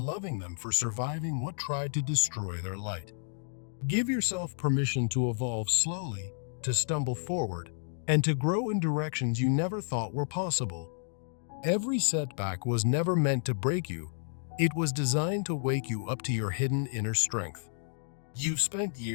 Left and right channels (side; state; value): right; silent; digital silence